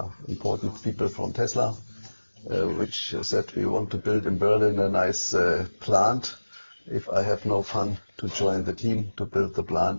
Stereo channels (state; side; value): inverted; both; correlation -1.00